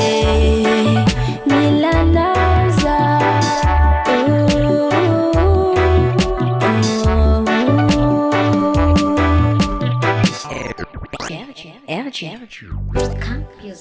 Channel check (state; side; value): identical; both; correlation 1.00